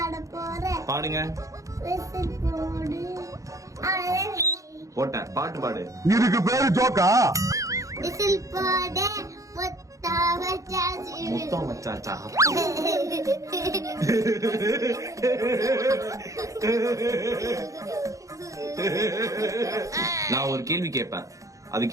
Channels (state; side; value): late; left; 0.16 ms